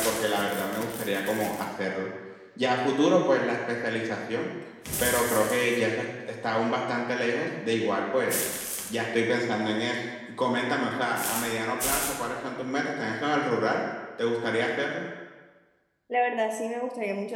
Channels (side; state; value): both; identical; correlation 1.00